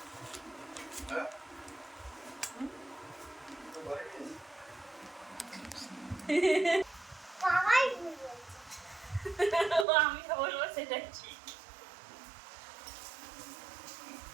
আমি তো বলবো সেটা ঠিক।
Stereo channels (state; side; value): drops out; left; at 9.9 s